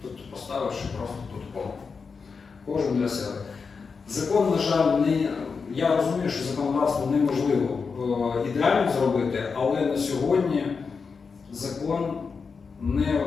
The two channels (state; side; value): quieter; right; 5.2 dB